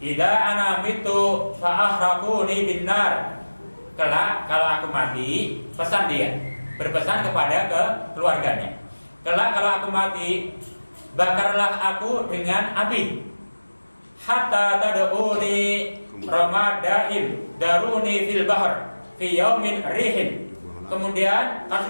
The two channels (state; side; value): inverted; both; correlation -1.00